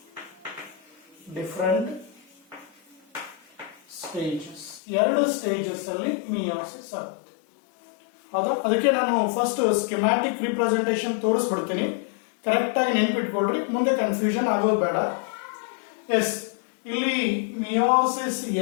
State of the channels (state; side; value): drops out; right; at 4.8 s